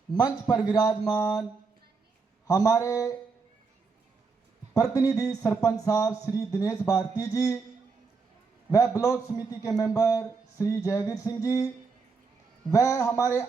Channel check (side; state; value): left; quieter; 4.7 dB